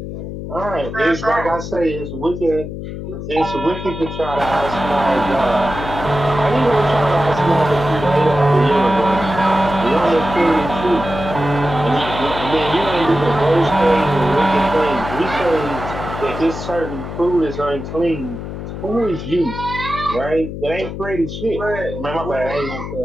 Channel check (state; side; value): noise; left; hum, 8 dB below the sound